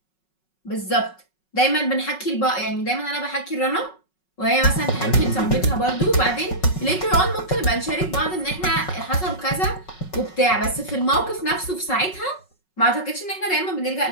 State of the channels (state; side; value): late; right; 5.4 ms